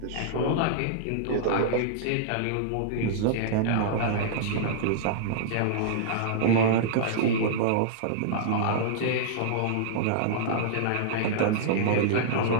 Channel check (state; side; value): different; both; correlation -0.02